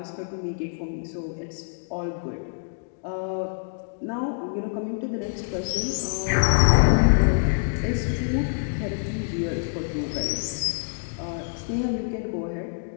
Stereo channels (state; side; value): silent; right; digital silence